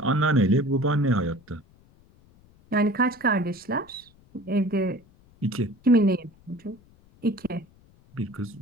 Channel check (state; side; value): noise; left; rumble, 29 dB below the sound